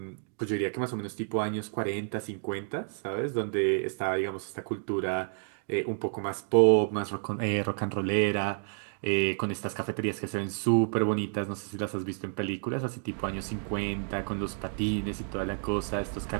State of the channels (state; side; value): silent; left; 58 dB below the other